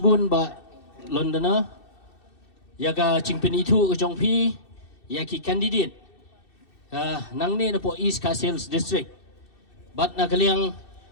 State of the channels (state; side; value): late; right; 2.6 ms